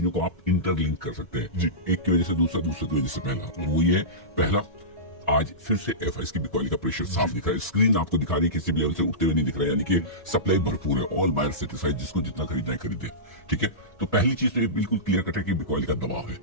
को आप इंटरलिंक कर सकते हैं जी। एक की वजह से दूसरा, दूसरे की वजह से पहला। वो ये पहला, आज फिर से एफआईएस की बिकवाली का प्रेशर साफ दिख रहा है। स्क्रीन आपको दिखा रही है किसी भी लेवल से उठते हुए नहीं दिख रहा है, यानी कि सप्लाई भरपूर है। ऑल बायर सेटिस्फाइड, जिसको जितना खरीदना है खरीदे। ठीक है, तो पहली चीज तो ये बिल्कुल क्लियर कट है कि बिकवाली का दबाव है।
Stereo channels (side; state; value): both; normal; correlation -0.19